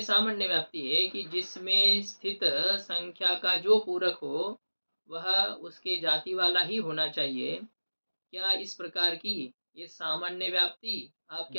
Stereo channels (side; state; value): both; inverted; correlation -1.00